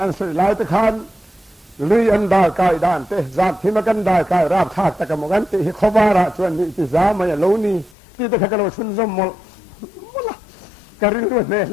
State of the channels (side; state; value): right; drops out; at 8.0 s